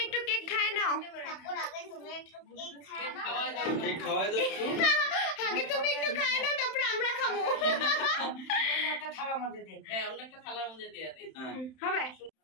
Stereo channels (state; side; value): late; right; 31 ms